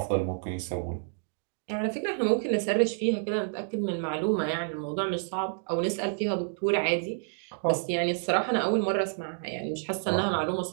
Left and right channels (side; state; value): left; silent; digital silence